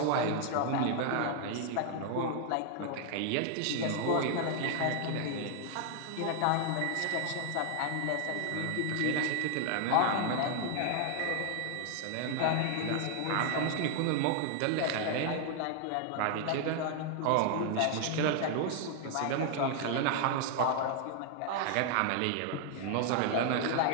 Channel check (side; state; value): both; different; correlation 0.00